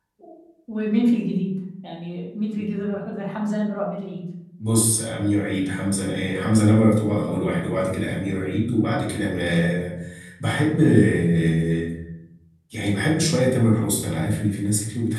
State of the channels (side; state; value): both; identical; correlation 1.00